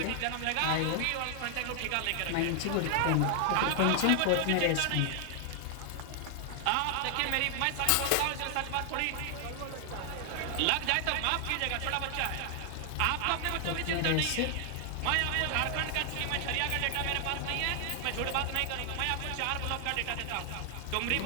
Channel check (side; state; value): both; different; correlation 0.00